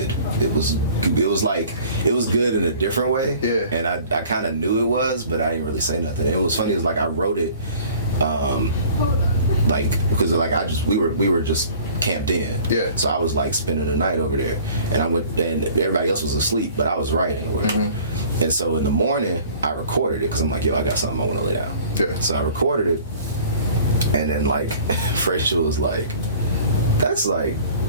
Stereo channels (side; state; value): both; inverted; correlation -0.49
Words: It was good in a different way. Yeah. And I kind of knew it was, but I didn't really say nothing. It was funny. It was like I wrote it, because we were just camped in. Yeah. So I was like spending the night over there, and and everybody else was asleep, but I was writing or whatever. And so in the morning I recorded it because I'm like, yo, I got something I want to lay down. Yeah. So I recorded it, and then like Frazier was like, that's like